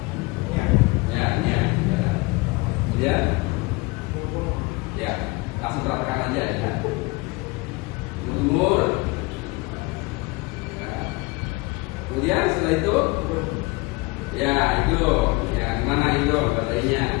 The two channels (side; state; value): right; quieter; 24.8 dB